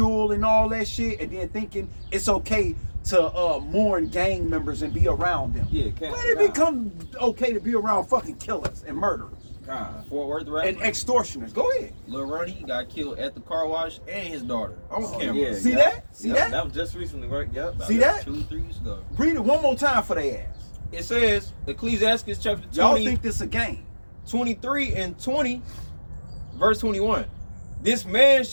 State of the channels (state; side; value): inverted; both; correlation -1.00